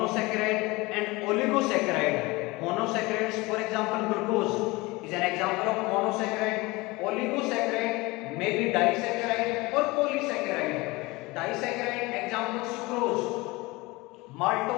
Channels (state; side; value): quieter; right; 22.7 dB